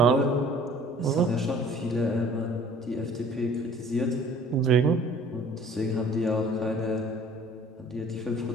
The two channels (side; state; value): both; normal; correlation 0.51